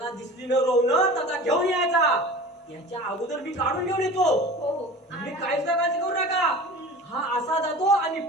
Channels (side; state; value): both; normal; correlation 0.38